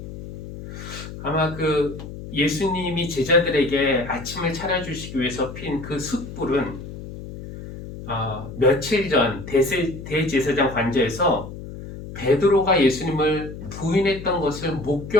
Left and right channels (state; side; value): noise; left; hum, 11 dB below the sound